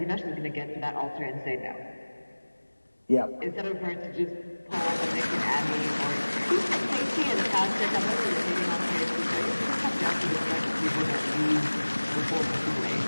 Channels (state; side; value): inverted; both; correlation -1.00